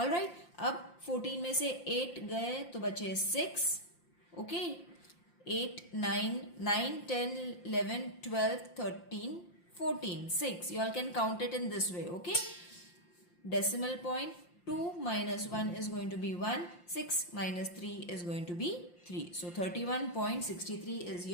अब 14 में से 8 गए तो बचे 6. Okay, 8, 9, 10, 11, 12, 13, 14, 6. You all can count it in this way. Okay. Decimal point, 2 minus 1 is going to be 1. 6 minus 3 is going to be 3. So 31.63 is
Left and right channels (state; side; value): late; right; 5.7 ms